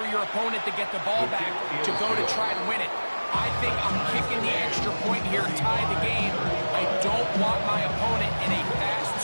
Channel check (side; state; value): both; inverted; correlation -1.00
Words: your opponent to get the ball back to go to try to win it? I think I'm kicking the extra point here, tie the game. I don't want my opponent in a